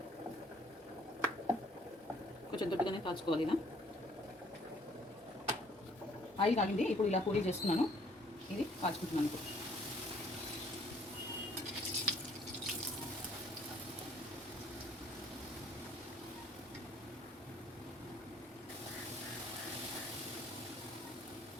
కొంచెం దొడ్డుగానే కాల్చుకోవాలి. ఇలా ఆయిల్ కాగింది. ఇప్పుడు ఇలా పూరీ చేస్తున్నాను. ఇది కాల్చుకుంటున్నాను. ఇప్పుడు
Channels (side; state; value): both; normal; correlation 0.60